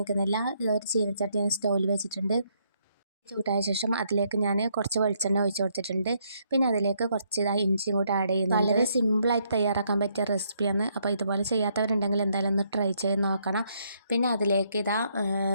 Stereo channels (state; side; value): inverted; both; correlation -0.73